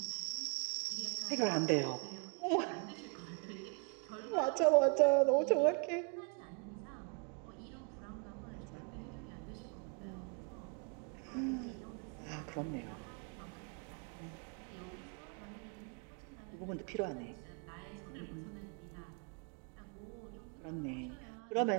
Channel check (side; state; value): left; quieter; 36.5 dB